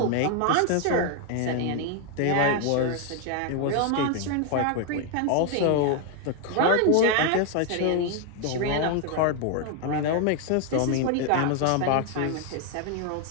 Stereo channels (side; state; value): both; different; correlation 0.01